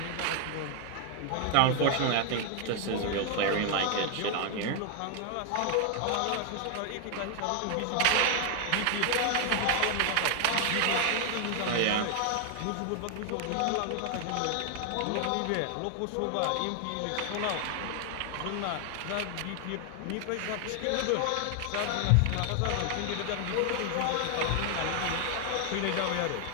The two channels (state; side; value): different; both; correlation 0.00